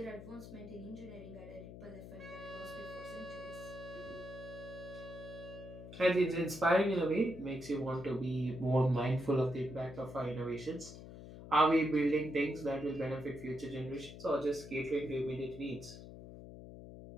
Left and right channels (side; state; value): left; noise; hum, 13 dB below the sound